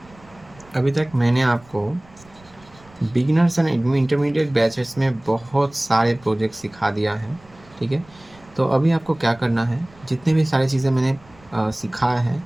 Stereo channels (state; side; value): noise; right; rumble, 26 dB below the sound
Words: अभी तक मैंने आपको बिगिनर्स एंड इंटरमीडिएट बैचेस में बहुत सारे प्रोजेक्ट सिखा दिया है, ठीक है। तो अभी आपको क्या करना है, जितने भी सारी चीज़ें मैंने सिखाया है,